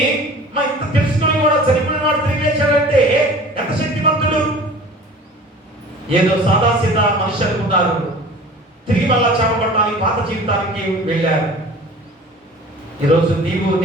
మా ఇంత తెలుసుకొని కూడా చనిపోయిన వాడు తిరిగి లేచాడంటే ఎంత శక్తివంతుడు. ఏదో సాదాసీదా మనిషి అనుకున్నారు, తిరిగి మళ్ళా చేపట్టడానికి పాత జీవితానికి వెళ్ళారు. ఈరోజు నీవు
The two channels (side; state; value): both; normal; correlation 0.43